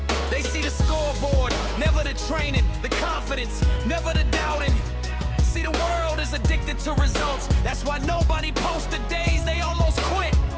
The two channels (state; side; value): identical; both; correlation 1.00